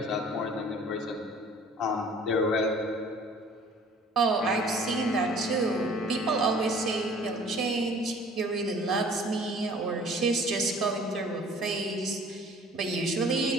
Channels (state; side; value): normal; both; correlation 0.51